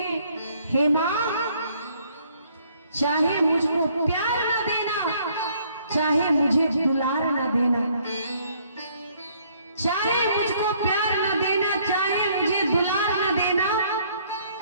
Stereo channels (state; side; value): inverted; both; correlation -0.64